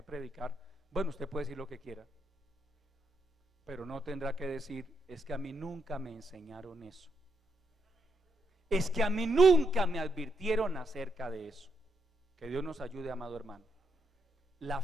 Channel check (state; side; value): normal; both; correlation 0.78